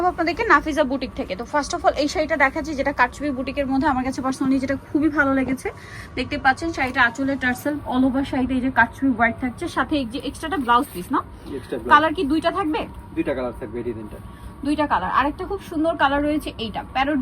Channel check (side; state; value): both; identical; correlation 1.00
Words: আপনাদেরকে নাফিজা বুটিক থেকে। তো ফার্স্ট অফ অল এই শাড়িটা দেখাচ্ছি, যেটা কারচুপি বুটিকের মধ্যে আমার কাছে পার্সোনালি যেটা খুবই ভালো লেগেছে। দেখতে পাচ্ছেন শাড়িটা আঁচলের টার্সেল, অল ওভার শাড়িতে এই যে কারচুপি ওয়ার্ক থাকছে, সাথে এই যে এক্সট্রাটা ব্লাউজ পিস না। কালার কি দুইটা থাকবে? দুইটা কালার থাকবে, এই তিনটা দুইটা কালার। আরেকটা খুব সুন্দর কালার রয়েছে, এইটা প্যারট